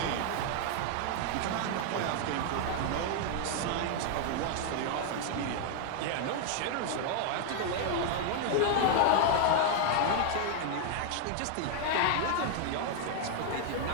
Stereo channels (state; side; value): different; both; correlation 0.00